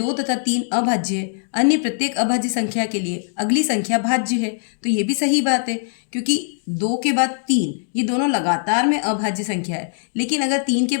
तथा 3 अभाज्य है, अन्य प्रत्येक अभाज्य संख्या के लिए अगली संख्या भाज्य है। तो ये भी सही बात है, क्योंकि 2 के बाद 3 ये दोनों लगातार में अभाज्य संख्या है। लेकिन अगर 3 के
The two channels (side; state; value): right; silent; digital silence